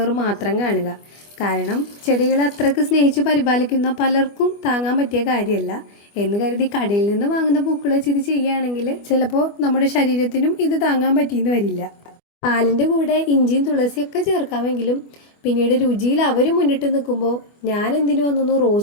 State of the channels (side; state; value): right; late; 25 ms